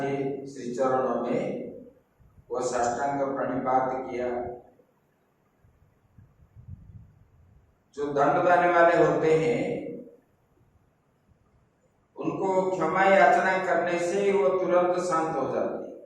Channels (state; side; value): identical; both; correlation 1.00